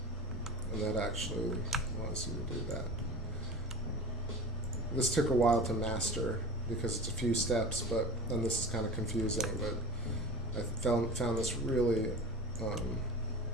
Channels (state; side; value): normal; both; correlation 0.33